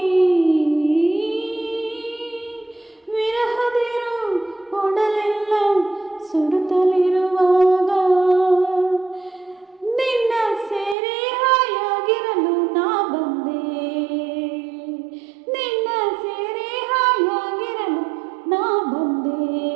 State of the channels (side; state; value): left; drops out; at 11.0 s